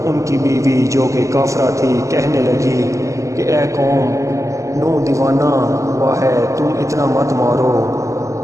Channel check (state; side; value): late; left; 0.15 ms